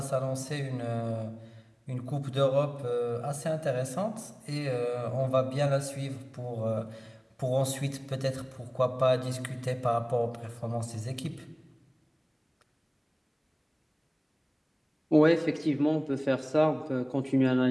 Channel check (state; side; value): identical; both; correlation 1.00